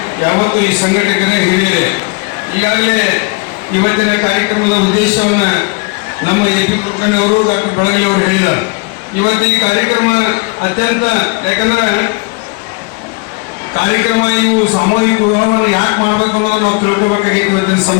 ಯಾವತ್ತು ಈ ಸಂಘಟಕರೇ ಹಿರಿಯರೇ. ಈಗಾಗಲೇ ಇವತ್ತಿನ ಕಾರ್ಯಕ್ರಮದ ಉದ್ದೇಶವನ್ನು ನಮ್ಮ ಎ.ಪಿ. ಕುಲಕರ್ಣಿಯವರು ಡಾಕ್ಟರ್ ಬಳಗಿ ಅವರು ಹೇಳಿದ್ದಾರೆ. ಇವತ್ತು ಈ ಕಾರ್ಯಕ್ರಮ ಅತ್ಯಂತ, ಯಾಕಂದ್ರೆ ಕಾರ್ಯಕ್ರಮ ಇವು ಸಾಮೂಹಿಕ ವಿವಾಹವನ್ನು ಯಾಕೆ ಮಾಡಬೇಕು ಅನ್ನೋದು ನಾವು ತಿಳ್ಕೊಬೇಕಾಗಿತ್ತು ಇವತ್ತಿನ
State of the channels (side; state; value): right; quieter; 29.5 dB